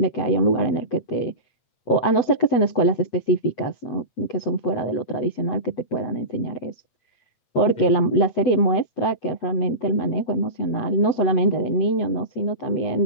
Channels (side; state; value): right; late; 8.1 ms